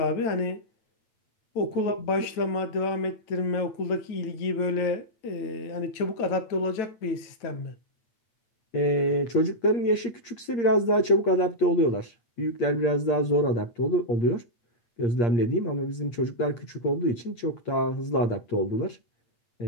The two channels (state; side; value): late; right; 8.6 ms